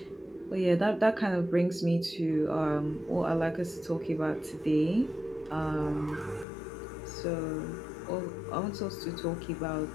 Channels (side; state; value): right; drops out; at 6.5 s